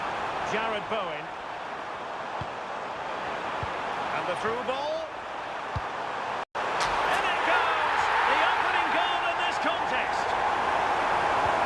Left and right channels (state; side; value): identical; both; correlation 1.00